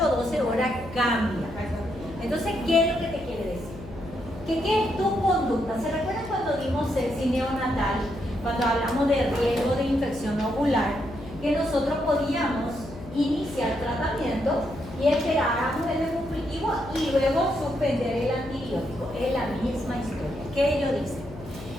o 12 horas cambia. Entonces, ¿qué es lo que te quiere decir? Que ¿qué es tu conducta? ¿Se recuerdan cuando dimos sexy neonatal? Cuando hablamos de riesgo de infección ovular, que nosotros podíamos iniciar tratamiento y esperáramos el cultivo y luego suspender el antibiótico. Es la misma historia. ¿Qué ellos dicen?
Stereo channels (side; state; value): left; noise; hum, 14 dB below the sound